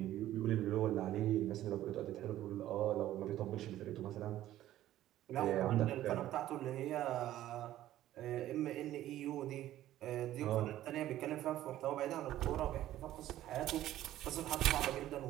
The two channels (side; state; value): left; quieter; 13.6 dB